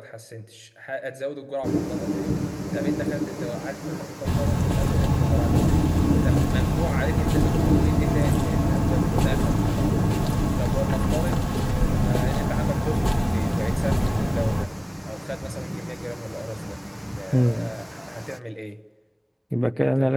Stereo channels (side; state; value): both; identical; correlation 1.00